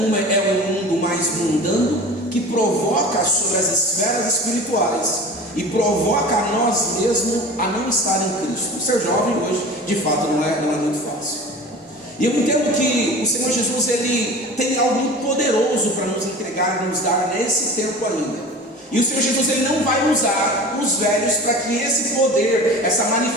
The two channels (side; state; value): both; normal; correlation 0.37